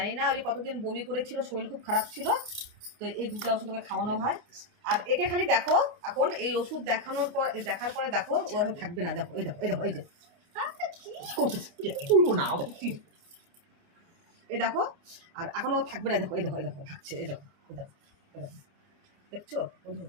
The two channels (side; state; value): left; late; 29 ms